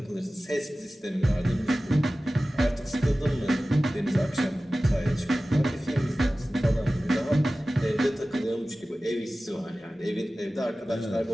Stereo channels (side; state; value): both; normal; correlation 0.96